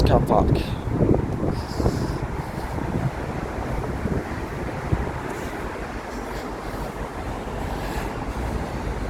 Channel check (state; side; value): identical; both; correlation 1.00